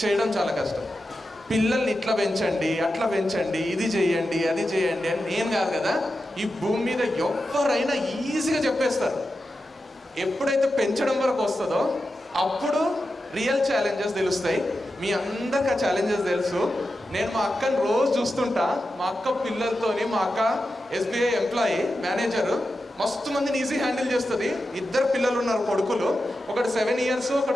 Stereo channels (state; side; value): normal; both; correlation 0.90